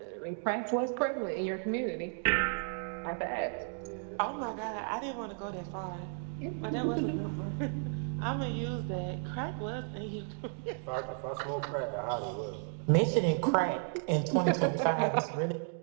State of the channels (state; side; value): silent; left; 55 dB below the other